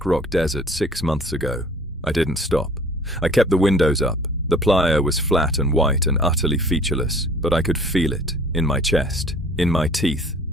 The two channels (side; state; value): both; normal; correlation 0.51